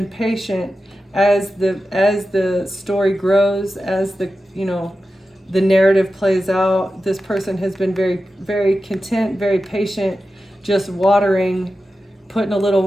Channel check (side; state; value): both; normal; correlation 0.92